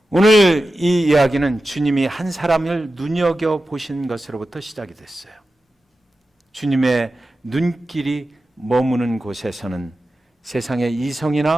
오늘 이 이야기는 주님이 한 사람을 눈여겨보신 것으로부터 시작이 됐어요. 주님의 눈길이 머무는 곳에서는 세상의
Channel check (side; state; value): both; normal; correlation 0.93